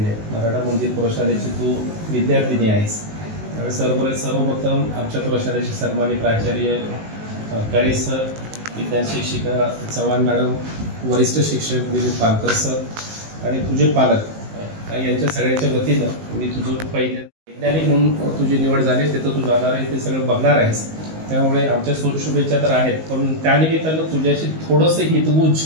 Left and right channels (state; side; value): late; left; 19 ms